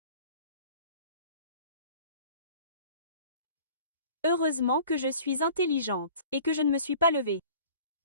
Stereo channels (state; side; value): inverted; both; correlation -0.47